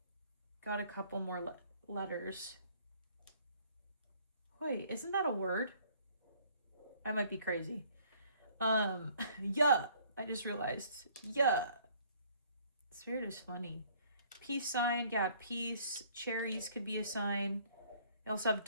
Got a couple more letters. Wait, isn't that a word? I might be crazy. Yeah. I just realized. Yeah. Spirit is funny. Peace sign. Yeah, peace. Cherries could be a sign. I also have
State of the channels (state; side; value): inverted; both; correlation -0.59